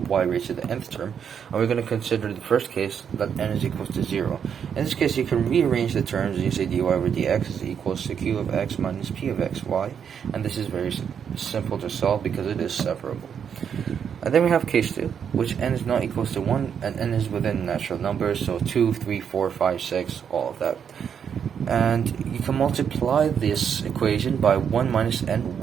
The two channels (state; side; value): quieter; left; 7.7 dB